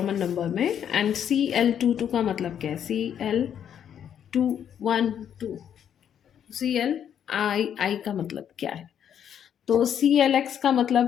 नंबर में, एंड CL22 का मतलब क्या है, CL212, CLI का मतलब क्या है। तो CL(x) का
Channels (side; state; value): right; quieter; 9.1 dB